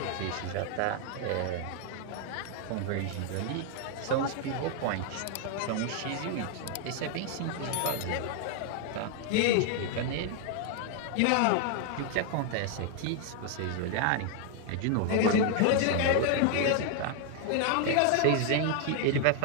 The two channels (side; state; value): both; different; correlation 0.00